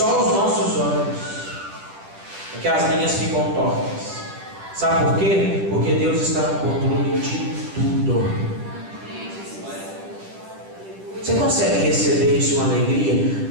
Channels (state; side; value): late; left; 10 ms